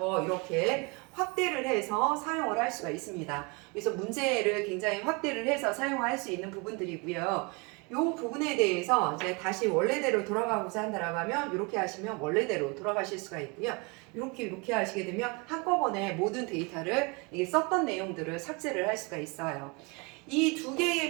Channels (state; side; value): quieter; left; 29.6 dB